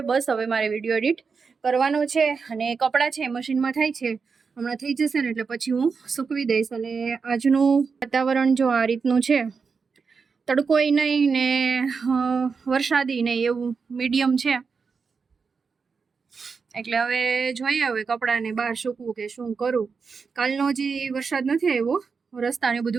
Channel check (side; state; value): left; quieter; 5.3 dB